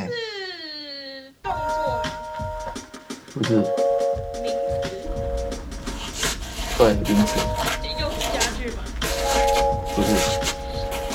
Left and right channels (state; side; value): identical; both; correlation 1.00